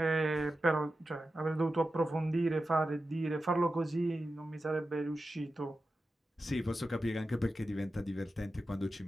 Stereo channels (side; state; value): both; normal; correlation 0.92